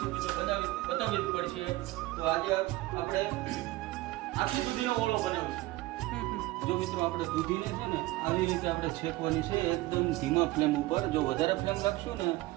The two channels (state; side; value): quieter; left; 18.8 dB